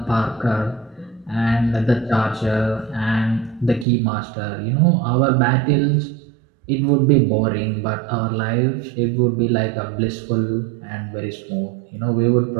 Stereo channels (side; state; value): left; drops out; at 3.9 s